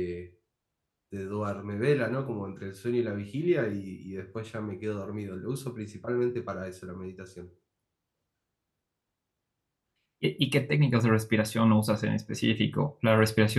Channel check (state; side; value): identical; both; correlation 1.00